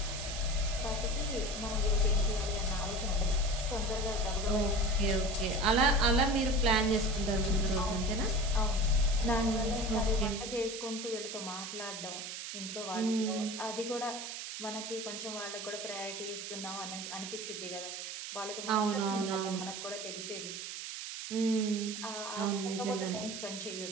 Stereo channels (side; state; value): right; noise; hiss, 7 dB below the sound